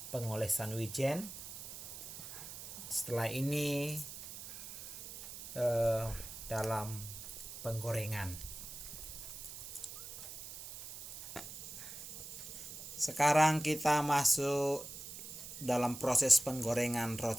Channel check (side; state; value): right; noise; hiss, 10 dB below the sound